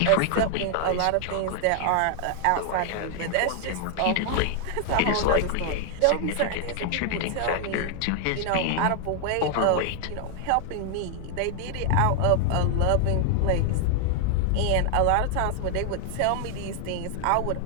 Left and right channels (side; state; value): both; different; correlation 0.00